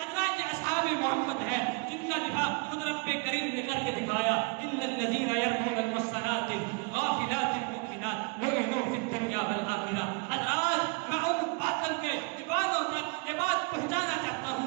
یہ اصحاب محمد ہے جن کا دفاع خود رب کریم نے کر کے دکھایا، ان الذین یرمون المحصنات الغافلات المؤمنات لعنوا فی الدنیا والآخرہ۔ حضرات، میں ان باطل کے دیوانوں تک یہ بات پہنچانا چاہتا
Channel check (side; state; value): left; quieter; 31.8 dB